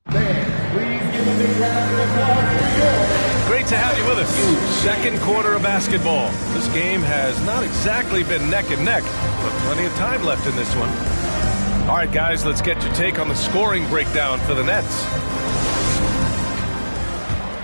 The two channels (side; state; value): both; inverted; correlation -1.00